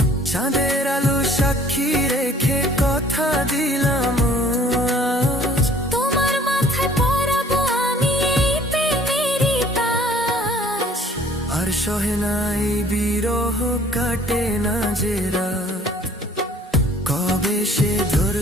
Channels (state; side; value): normal; both; correlation 0.55